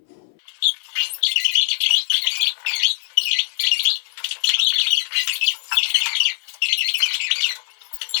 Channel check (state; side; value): silent; right; 62 dB below the other